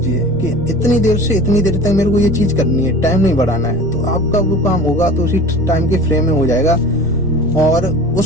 कि इतनी देर से इतनी देर तक मेरे को ये चीज करनी है, टाइम नहीं बढ़ाना है। तो आपका वो काम होगा तो उसी टाइम के फ्रेम में हो जाएगा, और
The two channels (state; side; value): normal; both; correlation 0.39